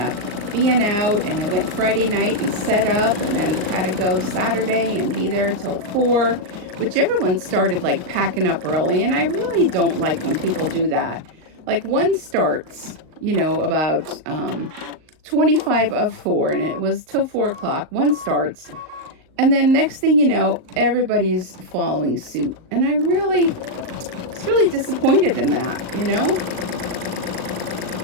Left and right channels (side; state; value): left; late; 38 ms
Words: being out. And I went Friday night and set up, and then had to go Saturday and be there till 4, which everyone started like packing up early. And I really don't like when people do that. Like one starts, you know, about 25 of 4, and it was till 4 o'clock. One starts. And then next thing you know, everybody's following suit. And I was really disappointed in that, you know?